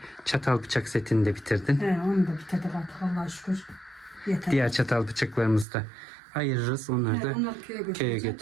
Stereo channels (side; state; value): left; drops out; at 5.7 s